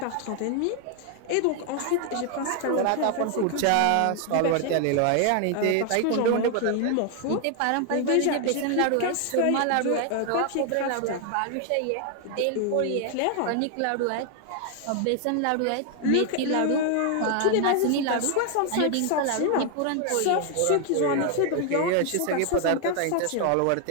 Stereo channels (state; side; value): different; both; correlation 0.00